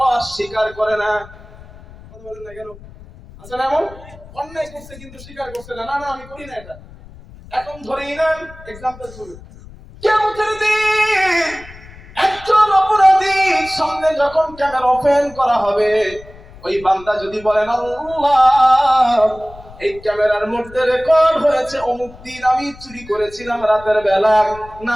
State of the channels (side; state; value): left; noise; rumble, 20 dB below the sound